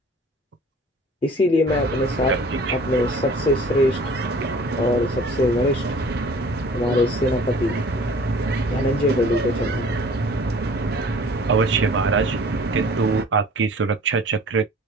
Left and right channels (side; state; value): both; normal; correlation 0.48